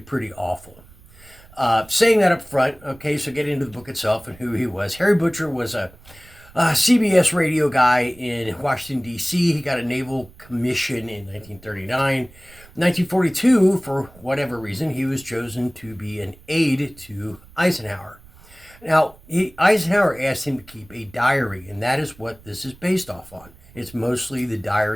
awful. Saying that up front, okay, so get into the book itself and who he was. Harry Butcher was a CBS radio guy in Washington, D.C. He got a naval commission in 1939. 1942, for whatever reason, he was chosen to be an aide to Eisenhower. Now, Eisenhower asked him to keep a diary, and that is what this is based off on. It's mostly the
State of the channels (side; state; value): right; noise; rumble, 23 dB below the sound